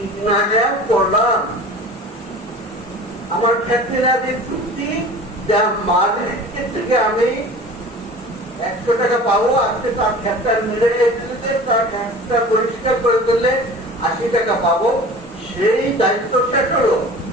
আয়াত পড়লাম। আমার ক্ষেত্রে আগে চুক্তি, যা মার্কেট থেকে আমি 100 টাকা পাবো, আজকে তার ক্ষেতটা মিলে দিলে, তার ক্ষেতটা পরিষ্কার করে দিলে 80 টাকা পাবো, সেই দায়িত্ব শেষ হলো।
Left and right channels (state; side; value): normal; both; correlation 0.40